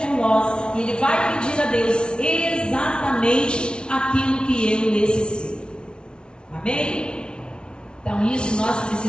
por nós e Ele vai pedir a Deus exatamente aquilo que eu necessito. Amém? Então isso nós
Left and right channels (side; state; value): right; late; 0.056 ms